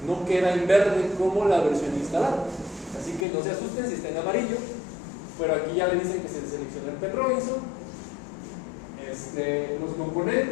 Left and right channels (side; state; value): right; drops out; at 3.2 s